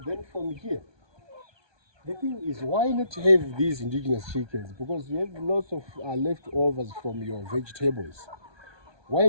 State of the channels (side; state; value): left; late; 1.2 ms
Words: then from here, The thing is, why not have these indigenous chickens? Because you have lots of leftovers from your vegetables. Why